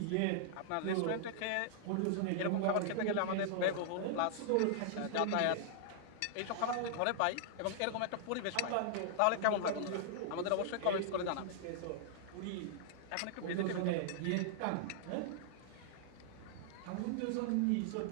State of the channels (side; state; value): both; different; correlation -0.01